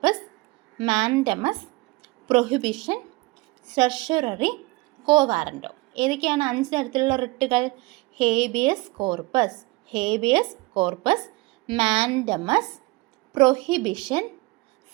മാൻഡമസ്, പ്രൊഹിബിഷൻ, സെർഷ്യററി, കോ വാറൻറ്റോ. ഏതൊക്കെയാണ് 5 തരത്തിലുള്ള റിട്ടുകൾ? ഹേബിയസ് കോർപ്പസ്, മാൻഡമസ്, പ്രൊഹിബിഷൻ,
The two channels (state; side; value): quieter; left; 23.5 dB